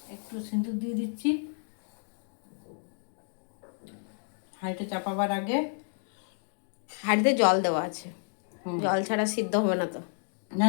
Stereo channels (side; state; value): right; silent; 57 dB below the other